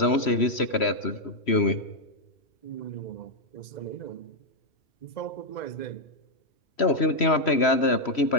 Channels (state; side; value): late; right; 3.1 ms